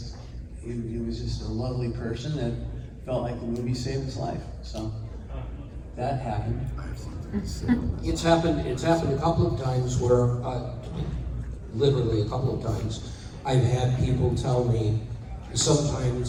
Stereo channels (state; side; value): identical; both; correlation 1.00